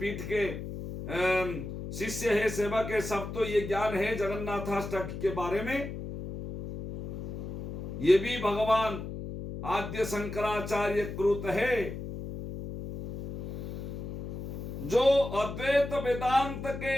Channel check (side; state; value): left; noise; hum, 7 dB below the sound